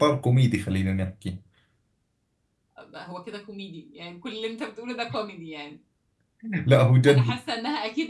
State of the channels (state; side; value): identical; both; correlation 1.00